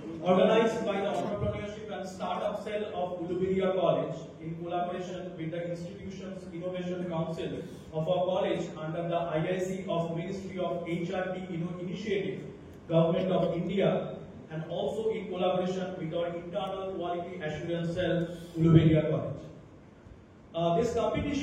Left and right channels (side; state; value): both; identical; correlation 1.00